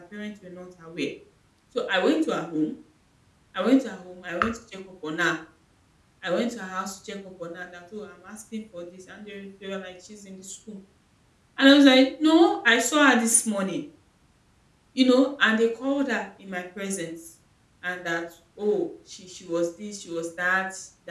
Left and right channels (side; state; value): both; identical; correlation 1.00